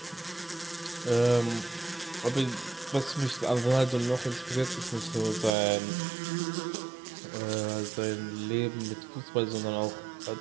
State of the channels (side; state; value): left; drops out; at 5.5 s